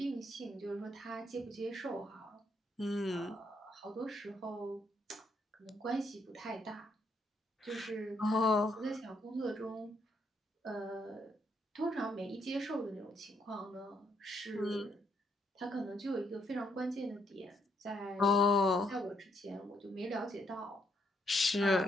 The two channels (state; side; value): normal; both; correlation 0.73